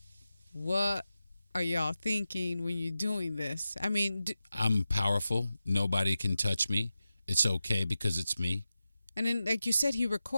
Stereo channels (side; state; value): both; inverted; correlation -0.93